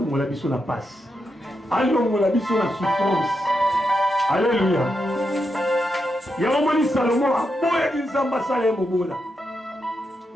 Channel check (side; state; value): both; normal; correlation 0.85